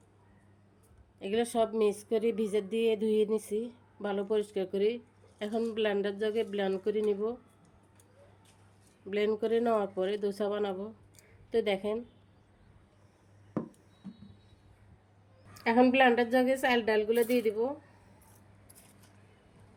এগুলো সব মিক্স করে ভিজে দিয়ে ধুয়ে নিছি ভালো পরিষ্কার করে। এখন ব্লেন্ডার জাগে ব্লেন্ড করে নিব। ব্লেন্ড করে নেওয়ার পরে দোসা বানাবো। তো দেখেন, এখন ব্লেন্ডার জাগে চাল ডালগুলো দিয়ে দিব।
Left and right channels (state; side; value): identical; both; correlation 1.00